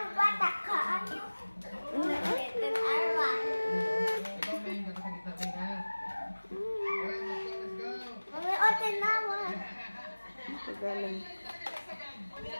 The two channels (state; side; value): inverted; both; correlation -1.00